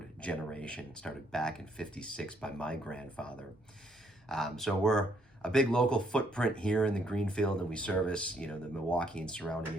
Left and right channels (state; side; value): normal; both; correlation 0.70